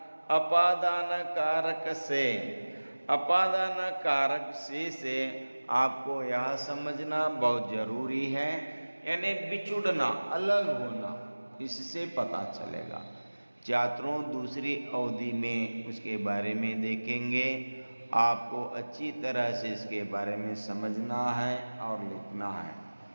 अपादान कारक से, अपादान कारक से आपको यह समझना बहुत जरूरी है, यानी बिछुड़ना, अलग होना, इससे पता चलेगा। छात्रों दूसरी अवधि में उसके बारे में देखेंगे। आपको अच्छी तरह से इसके बारे में समझना है और लिखना है।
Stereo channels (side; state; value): both; inverted; correlation -1.00